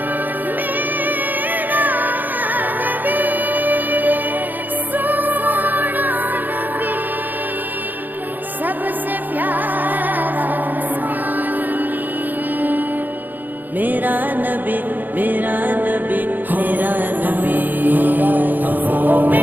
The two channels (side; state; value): left; late; 0.087 ms